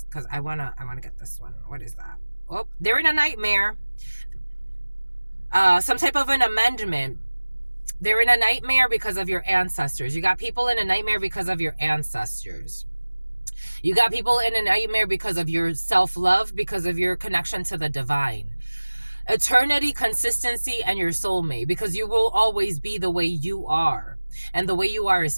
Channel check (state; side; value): inverted; both; correlation -1.00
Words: Because I wanna get this one. What is that? Oh, they're in a nightmare. Some type of an amendment. They're in a nightmare because of your ancestors. You got people in a nightmare because of your ancestors. You got people in a nightmare because of your self-love, because of your connection to the divine. Eternity, consistency, and your soulmate, because you will always be the way you are. And the way you are